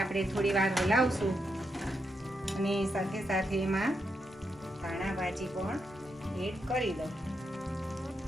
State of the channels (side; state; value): both; normal; correlation 0.83